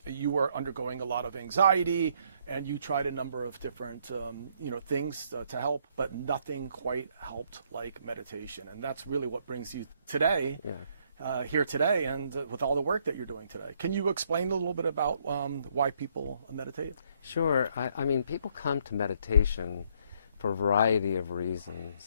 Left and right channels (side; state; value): both; inverted; correlation -0.69